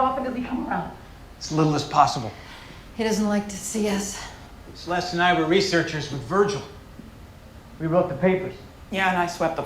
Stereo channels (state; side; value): identical; both; correlation 1.00